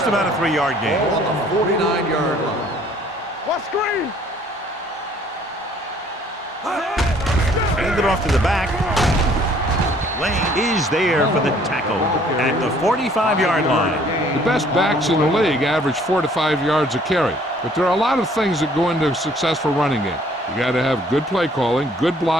about a 3-yard gain. Ball on the 49-yard line. What screen? Hand it off to the back. Lane is there for the tackle at the 45-yard line. The best backs in the league average 4 to 5 yards a carry, but there are a lot of things that go into a successful running game. You got to have good play calling, good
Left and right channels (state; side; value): normal; both; correlation 0.59